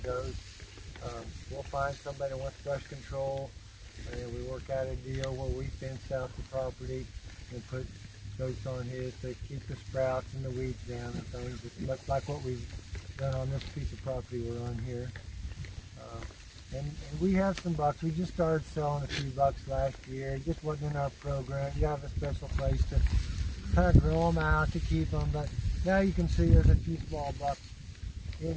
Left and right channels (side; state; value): both; identical; correlation 1.00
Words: We'll find somebody that wants brush control, and we work out a deal where we fence out the property and put goats on his to keep the sprouts and the weeds down and things. It's much like what we've done on this piece of property we're on here. And we have some bucks. We just started selling a few bucks last year. It just wasn't in our program. You have a special place to kind of grow them out to keep them. But now you can see there's a few small bucks in